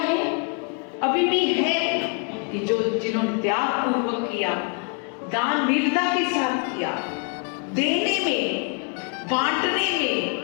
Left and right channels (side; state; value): right; quieter; 38.4 dB